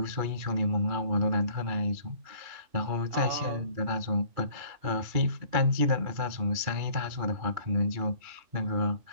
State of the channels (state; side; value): late; left; 2.4 ms